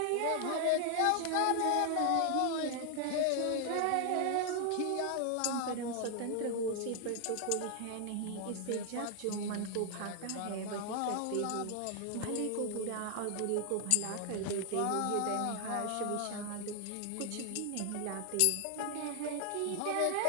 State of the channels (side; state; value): both; different; correlation 0.00